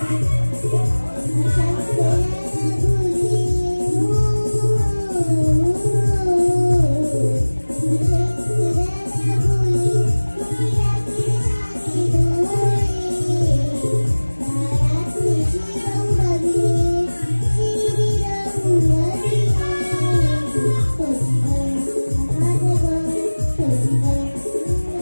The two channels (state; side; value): inverted; both; correlation -1.00